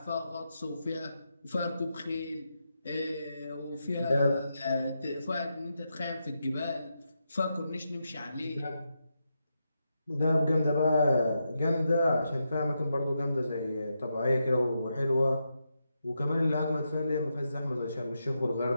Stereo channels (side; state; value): both; inverted; correlation -0.85